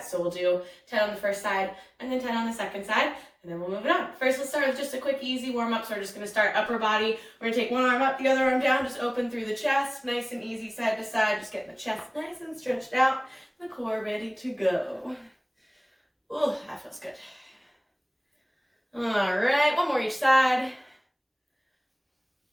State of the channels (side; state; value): both; identical; correlation 1.00